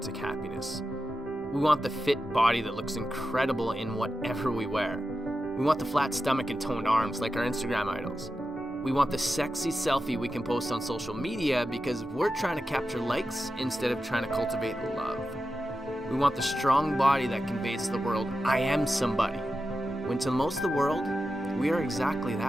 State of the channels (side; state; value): both; normal; correlation 0.91